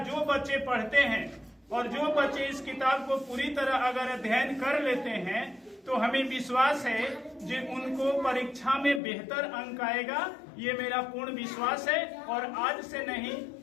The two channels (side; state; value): right; drops out; at 9.0 s